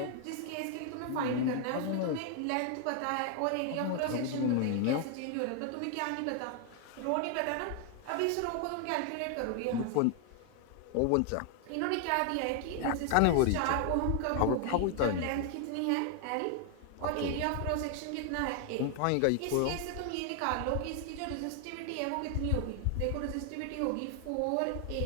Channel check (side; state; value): both; different; correlation 0.00